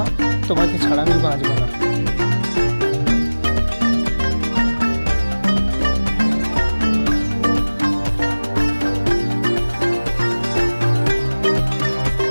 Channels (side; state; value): both; inverted; correlation -1.00